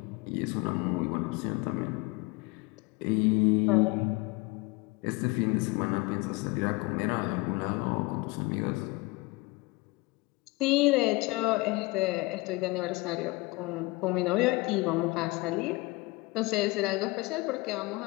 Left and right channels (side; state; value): right; quieter; 23.2 dB